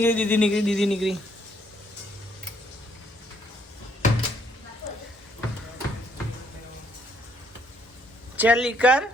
નીકળી ચલી કર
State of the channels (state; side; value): normal; both; correlation 0.68